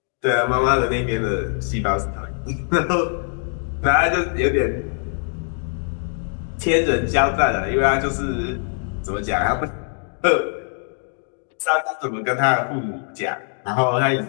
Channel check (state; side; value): silent; right; 56 dB below the other